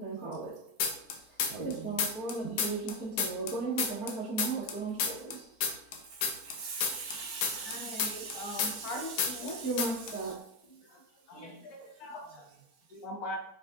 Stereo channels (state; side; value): late; right; 4.4 ms